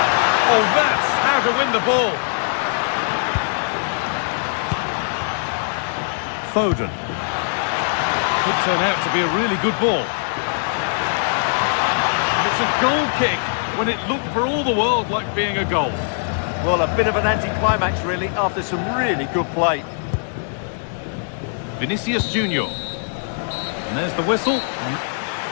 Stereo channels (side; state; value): right; silent; digital silence